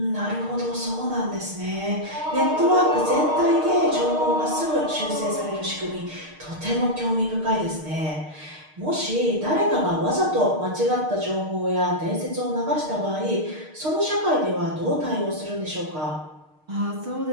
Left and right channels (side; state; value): left; late; 6.5 ms